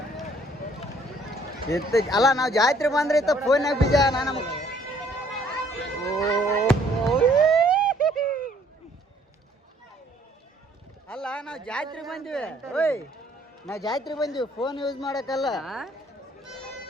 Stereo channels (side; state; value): both; normal; correlation 0.62